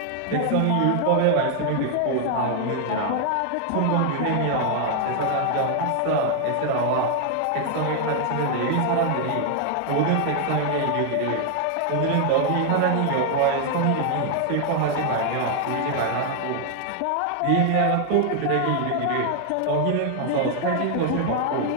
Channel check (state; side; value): different; both; correlation 0.00